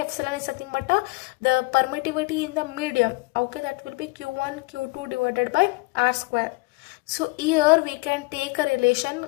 is nothing but the permittivity in the medium. Okay, that will be q1 q2 divided by r square. So here we can take a relation,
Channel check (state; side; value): quieter; right; 26.0 dB